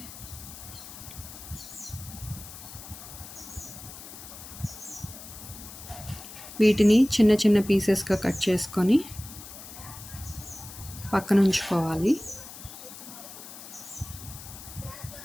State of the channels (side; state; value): left; noise; hiss, 14 dB below the sound